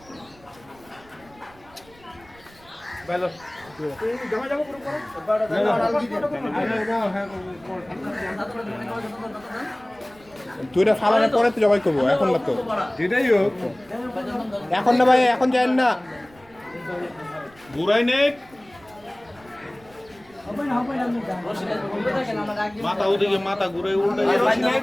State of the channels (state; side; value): noise; right; rumble, 26 dB below the sound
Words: দুইটা ফালানোর পরে তো জবাই করবো এখন না তো যেটাই হোক এখন না ভাই এখন যাই না ঘুরাই নে মাথা ওদিকে মাথা ঘুরে উল্টে